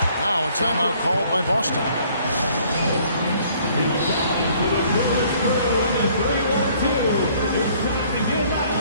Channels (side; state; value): both; inverted; correlation -0.59